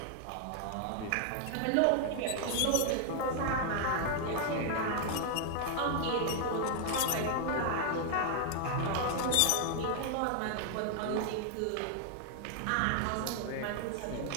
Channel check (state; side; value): different; both; correlation 0.00